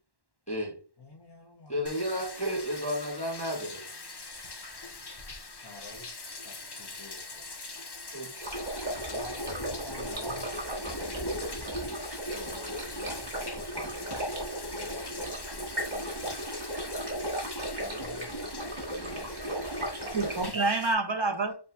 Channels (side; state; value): right; late; 1.1 ms